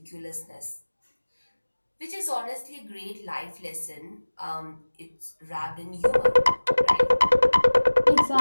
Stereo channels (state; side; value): inverted; both; correlation -1.00